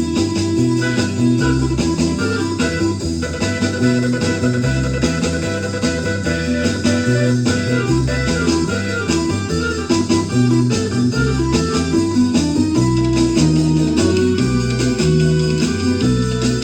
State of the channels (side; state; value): both; identical; correlation 1.00